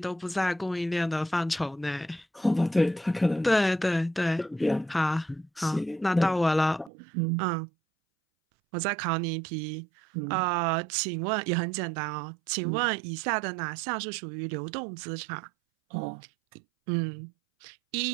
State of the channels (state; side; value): drops out; left; at 6.9 s